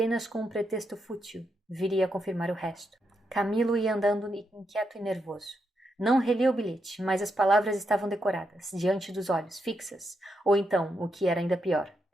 com um pretexto fútil, viria a confirmar o resto. Camilo ia andando inquieto e nervoso. Não relia o bilhete, mas as palavras estavam decoradas, diante dos olhos, fixas, ou então, o que era ainda pior,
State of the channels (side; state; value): both; normal; correlation 0.82